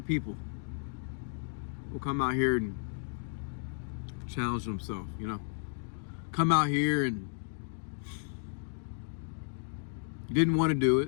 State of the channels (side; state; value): right; silent; digital silence